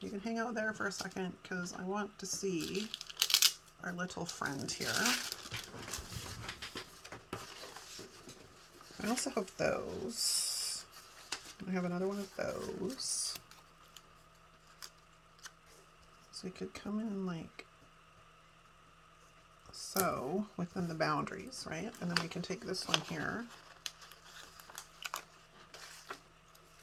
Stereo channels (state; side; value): identical; both; correlation 1.00